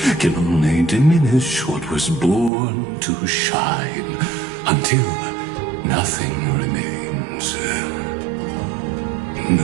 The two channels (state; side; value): drops out; left; at 2.5 s